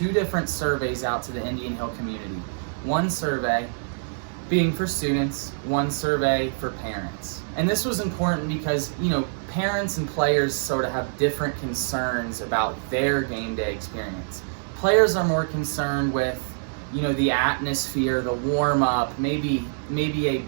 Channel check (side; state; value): left; silent; digital silence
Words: different surveys out to the Indian Hill community. One survey being for students, one survey for parents. And this was important because, parents and players sort of have different concerns about their game day experience. Players are more concerned with the atmosphere, the warm-up, maybe a